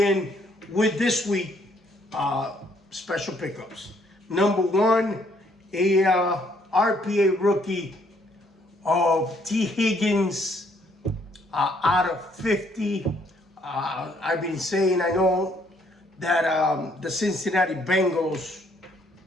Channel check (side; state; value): both; normal; correlation 0.67